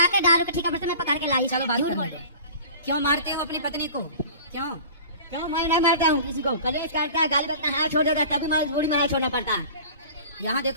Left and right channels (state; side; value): inverted; both; correlation -0.41